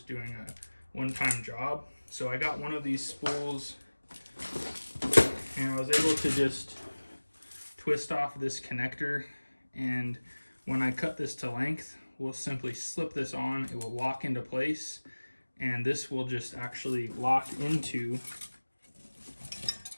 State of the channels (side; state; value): both; inverted; correlation -1.00